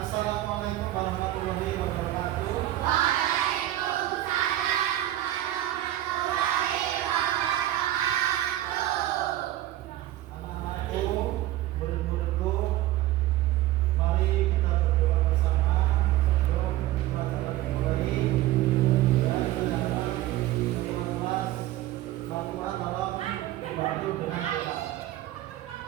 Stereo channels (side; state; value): left; quieter; 14.7 dB